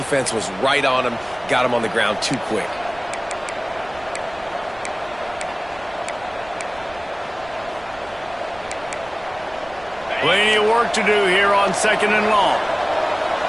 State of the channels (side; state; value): right; noise; rumble, 22 dB below the sound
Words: was right on him, got him on the ground too quick. Plenty of work to do here on second and long.